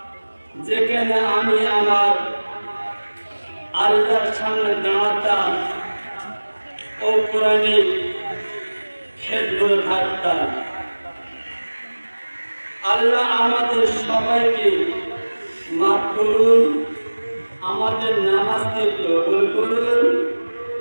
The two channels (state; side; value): inverted; both; correlation -1.00